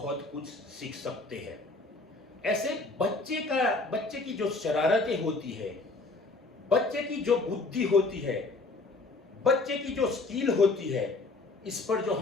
कुछ सीख सकते हैं। ऐसे बच्चे की जो शरारतें होती है, बच्चे की जो बुद्धि होती है, बच्चे की जो स्किल होती है, इस पर जो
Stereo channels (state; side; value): quieter; right; 3.5 dB